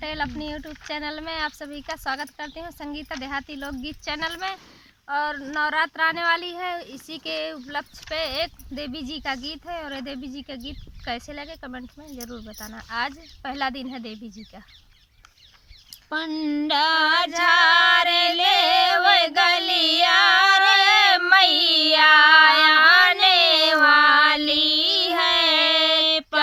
अपनी यूट्यूब चैनल में आप सभी का स्वागत करती हूँ, संगीता देहाती लोकगीत चैनल में। और नवरात्र आने वाली है, इसी के उपलक्ष्य पे एक देवी जी का गीत है। और ये देवी जी का गीत कैसे लगे कमेंट में ज़रूर बताना। आज पहला दिन है देवी जी का। पंडा झारे ले वो गलिया रे मैया आने वाली है।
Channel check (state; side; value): identical; both; correlation 1.00